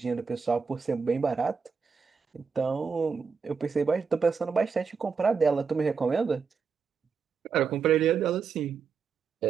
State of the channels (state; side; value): quieter; left; 5.6 dB